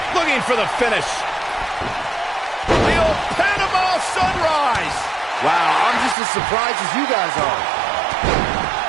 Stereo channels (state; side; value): drops out; left; at 6.2 s